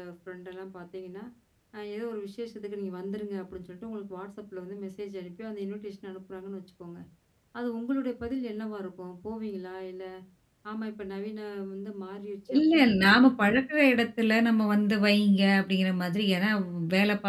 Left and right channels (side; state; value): both; identical; correlation 1.00